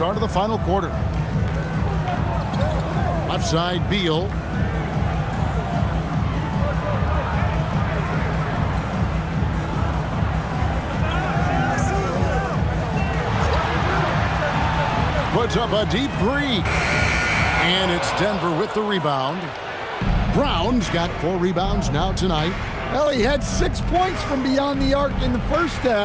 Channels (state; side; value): identical; both; correlation 1.00